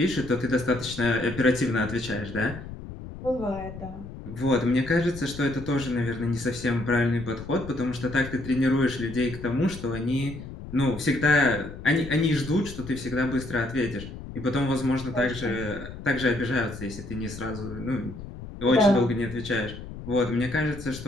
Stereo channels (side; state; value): left; noise; rumble, 12 dB below the sound